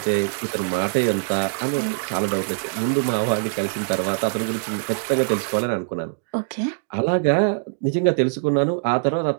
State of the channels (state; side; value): silent; left; digital silence